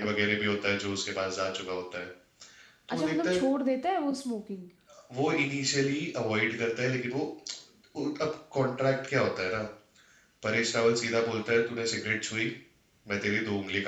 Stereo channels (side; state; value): both; identical; correlation 1.00